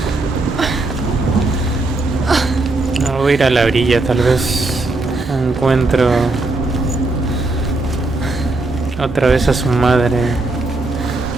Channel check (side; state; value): left; quieter; 3.1 dB